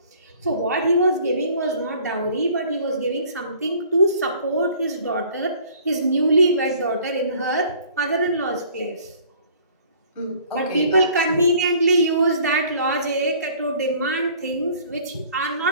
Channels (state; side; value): inverted; both; correlation -0.53